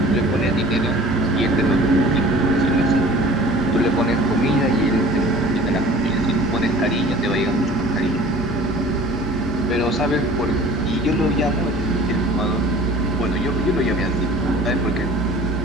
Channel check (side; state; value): both; normal; correlation 0.46